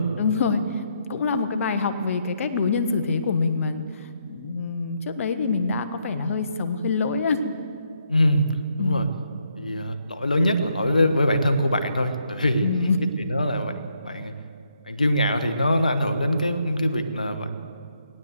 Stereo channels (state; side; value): inverted; both; correlation -0.76